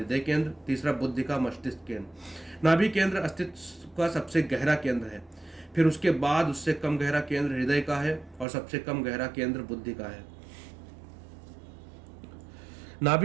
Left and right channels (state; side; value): drops out; left; at 8.5 s